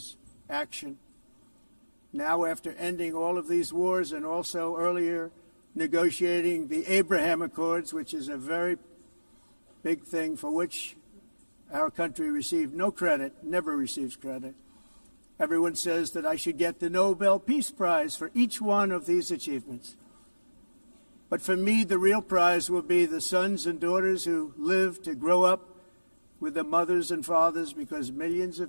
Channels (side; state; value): both; inverted; correlation -1.00